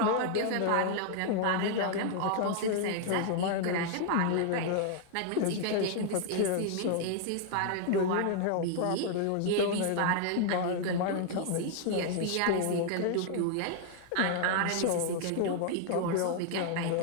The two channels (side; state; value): both; different; correlation 0.00